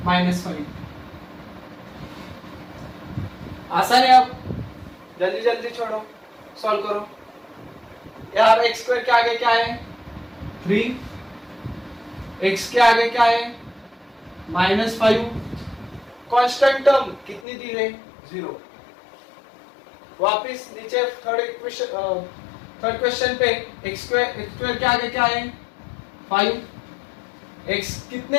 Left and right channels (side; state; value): right; drops out; at 17.4 s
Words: -5। आसान है। अब जल्दी जल्दी छोड़ो, सॉल्व करो। यार x स्क्वायर के आगे क्या है, 3, x के आगे क्या है, -5, कांस्टेंट टर्म कितनी दी है, 0। वापिस नीचे थर्ड क्वेश्चन पे x स्क्वायर के आगे क्या है, 5, x कितने